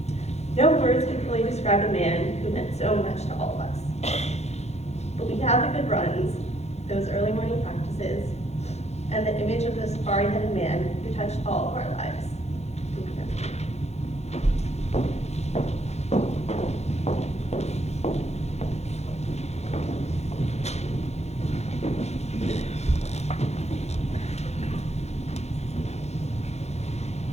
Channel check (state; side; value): late; right; 0.31 ms